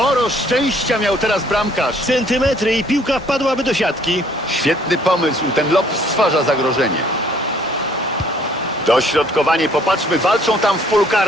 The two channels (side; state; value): both; normal; correlation 0.61